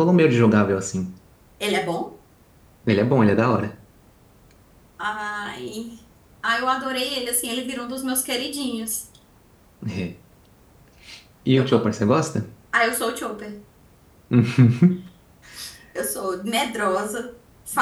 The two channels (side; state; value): both; identical; correlation 1.00